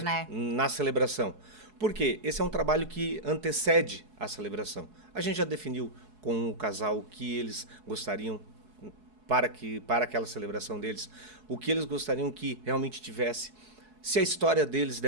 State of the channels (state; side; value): late; left; 4.7 ms